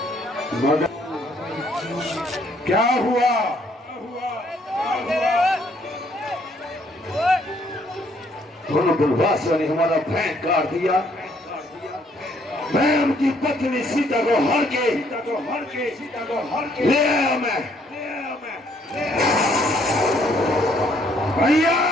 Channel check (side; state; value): both; normal; correlation 0.67